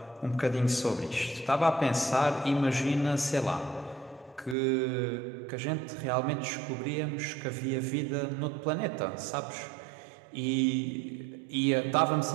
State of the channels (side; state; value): left; drops out; at 4.5 s